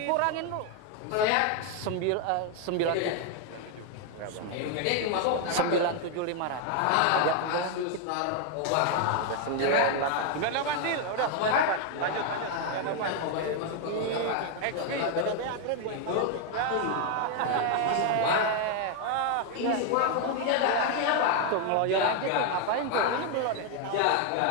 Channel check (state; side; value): different; both; correlation 0.01